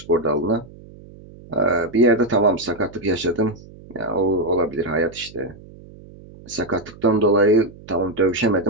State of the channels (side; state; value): right; noise; hum, 20 dB below the sound